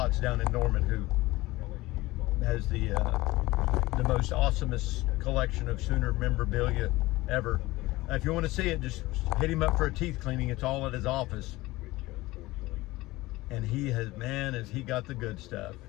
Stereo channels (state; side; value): quieter; right; 19.4 dB